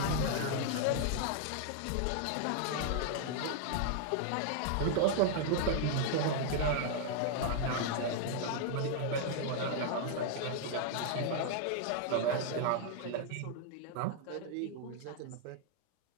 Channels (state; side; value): different; both; correlation 0.00